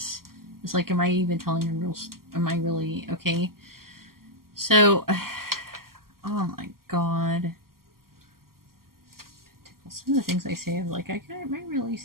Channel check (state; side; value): late; left; 0.92 ms